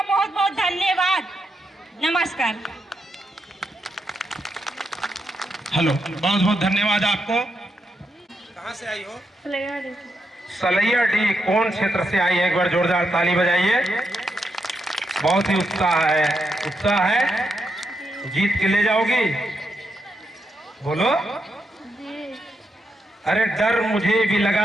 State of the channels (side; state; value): both; normal; correlation 0.82